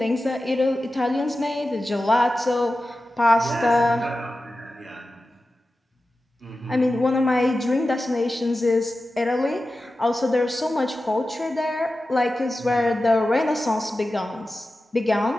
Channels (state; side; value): normal; both; correlation 0.94